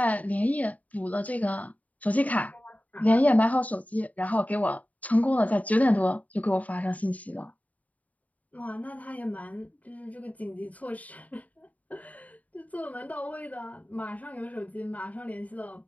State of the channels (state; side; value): late; right; 0.072 ms